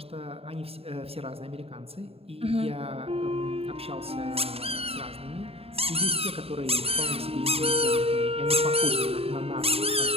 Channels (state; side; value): late; left; 0.28 ms